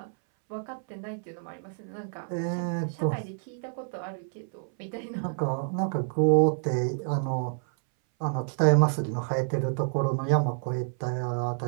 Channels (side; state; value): left; silent; 59 dB below the other